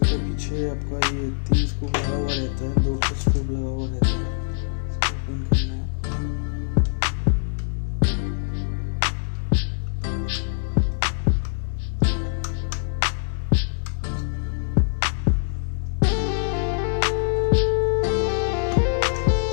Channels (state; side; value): silent; right; 59 dB below the other